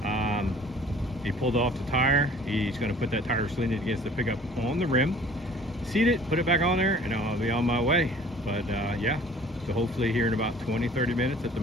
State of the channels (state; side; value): normal; both; correlation 0.52